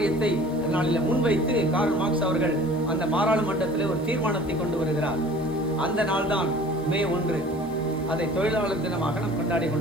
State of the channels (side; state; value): left; noise; hiss, 26 dB below the sound